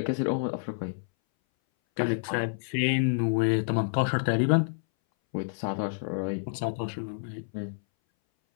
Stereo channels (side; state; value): right; silent; 59 dB below the other